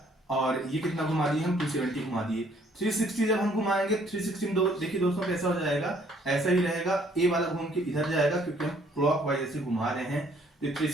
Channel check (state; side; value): normal; both; correlation 0.63